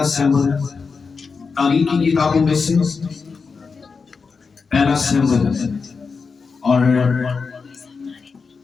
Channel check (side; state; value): right; quieter; 5.0 dB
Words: सैमुअल तारीख की किताबों में से पहला सैमुअल और